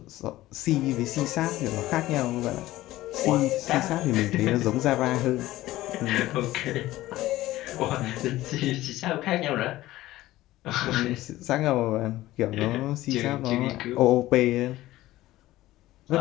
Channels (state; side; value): quieter; right; 16.3 dB